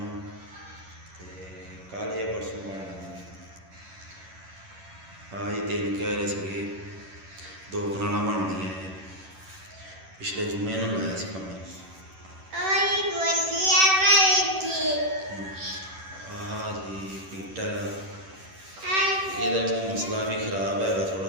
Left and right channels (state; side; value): late; left; 11 ms